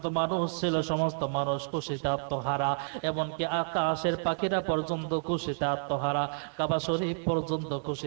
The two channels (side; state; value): left; silent; digital silence